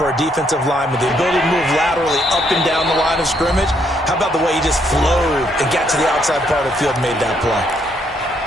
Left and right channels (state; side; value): normal; both; correlation 0.72